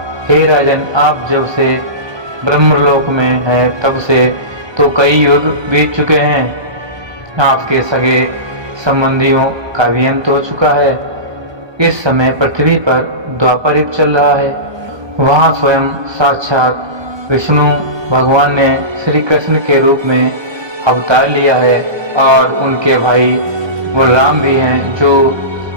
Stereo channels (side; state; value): left; late; 1.2 ms